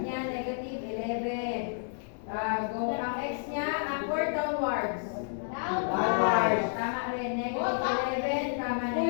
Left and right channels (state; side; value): silent; right; digital silence